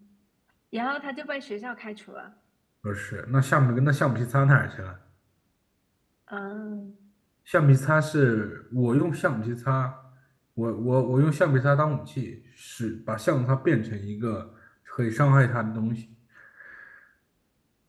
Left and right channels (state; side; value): identical; both; correlation 1.00